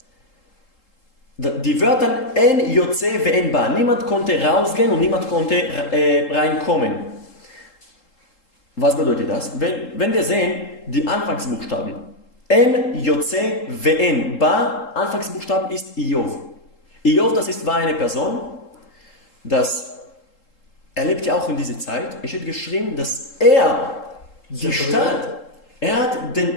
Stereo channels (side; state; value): right; late; 3.7 ms